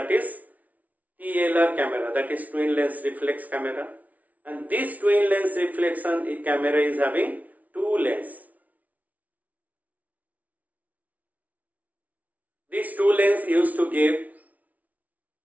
is TLR camera, that is twin lens reflex camera, and this twin lens reflection camera is having two lenses. These two lenses used to give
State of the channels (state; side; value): late; left; 0.072 ms